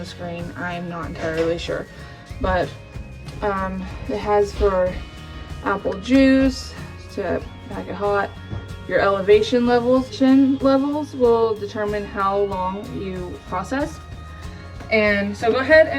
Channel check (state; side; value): identical; both; correlation 1.00